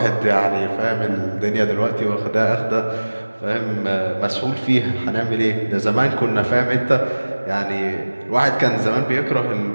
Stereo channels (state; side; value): inverted; both; correlation -1.00